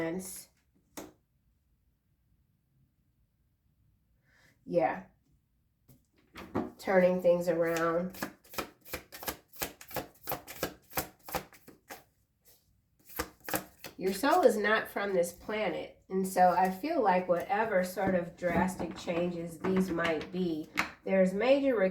Yeah. Turning things around. Your soul is not from this planet. And so I feel like whatever sort of drastic changes these might be, there's major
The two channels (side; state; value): both; identical; correlation 1.00